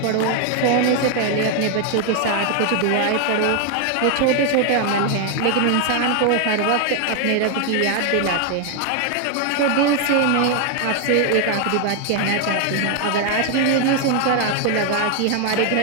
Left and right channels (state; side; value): different; both; correlation 0.01